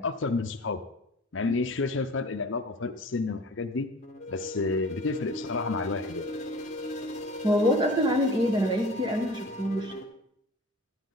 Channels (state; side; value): normal; both; correlation 0.41